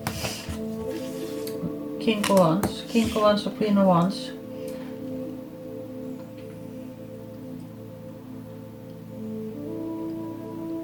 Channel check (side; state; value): both; identical; correlation 1.00